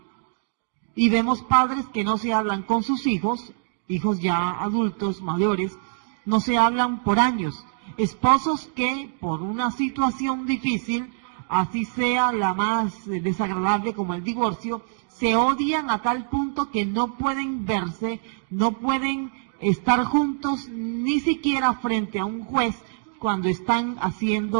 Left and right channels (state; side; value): silent; left; digital silence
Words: Y vemos padres que no se hablan con sus hijos ya adultos, mayores, no se hablan por años. Esposos que por una situación difícil, así sea la más desagradable como el divorcio, se odian a tal punto que no pueden verse, no pueden estar juntos ni siquiera frente a un juez cuando están